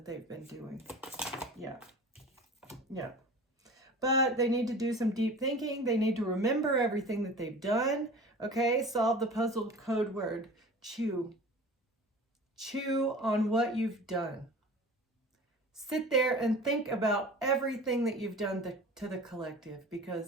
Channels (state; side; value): normal; both; correlation 0.40